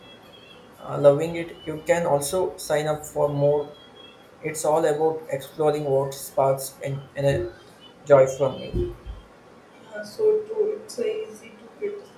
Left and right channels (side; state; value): both; identical; correlation 1.00